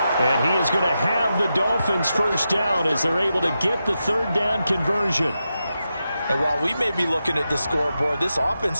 And he is going to have the Dolphins 1st down as they're able to get the 3rd down conversion. And while we may be looking at the scoreboard, this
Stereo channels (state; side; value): inverted; both; correlation -0.89